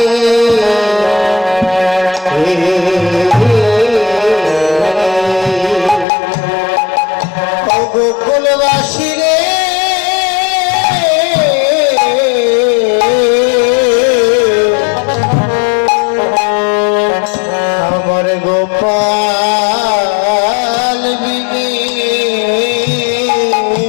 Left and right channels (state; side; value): drops out; right; at 6.1 s